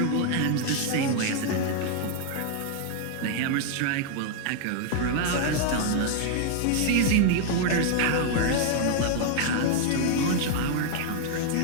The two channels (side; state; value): both; different; correlation 0.00